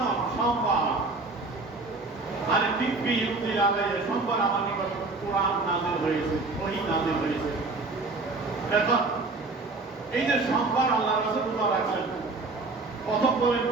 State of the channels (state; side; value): quieter; left; 3.5 dB